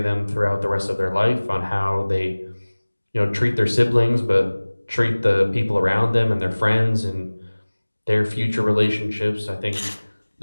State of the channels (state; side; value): inverted; both; correlation -1.00